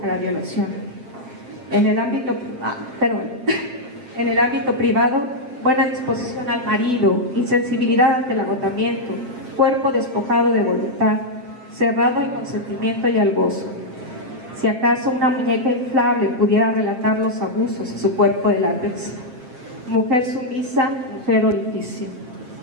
a la violación. En el ámbito privado, buena disposición al marido, insensibilidad ante el agotamiento, cuerpo despojado de voluntad, cerrado al consentimiento y al gozo. Si acaso una muñeca inflable pudiera relatar los abusos de su cuerpo de látex. Mujer sumisa, mujer orificio.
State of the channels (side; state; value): left; late; 7.9 ms